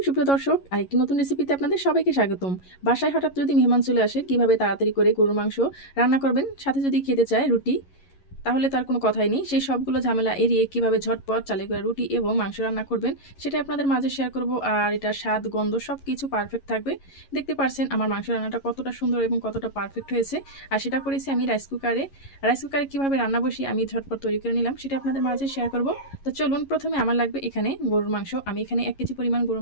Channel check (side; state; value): right; late; 11 ms